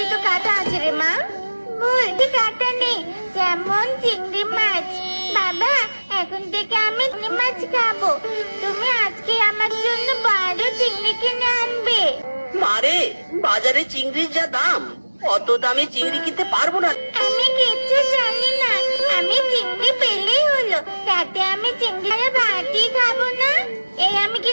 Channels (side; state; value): both; inverted; correlation -1.00